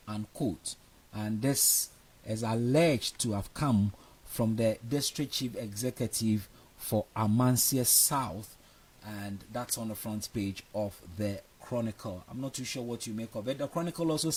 unquote. And this is alleged to have come from the district chief executive for Amansia South, and that's on the front page of the Chronicle. I'm not too sure what you make of it. The Chronicle also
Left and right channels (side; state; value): both; identical; correlation 1.00